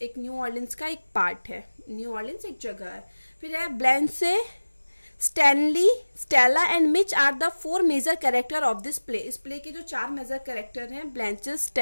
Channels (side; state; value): both; inverted; correlation -1.00